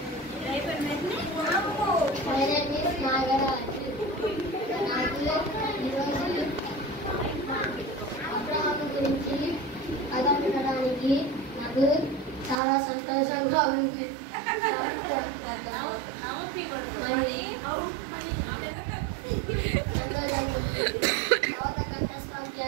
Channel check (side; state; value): left; drops out; at 12.6 s